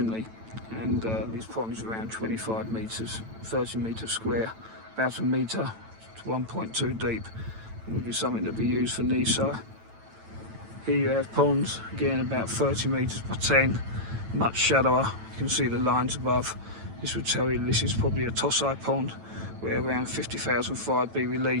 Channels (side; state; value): left; late; 9.0 ms